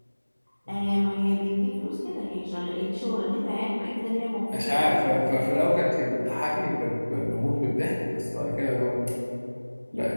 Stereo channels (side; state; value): both; inverted; correlation -1.00